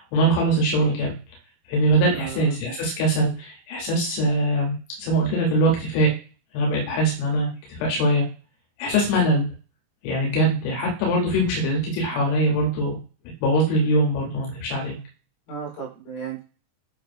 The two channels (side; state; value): right; late; 24 ms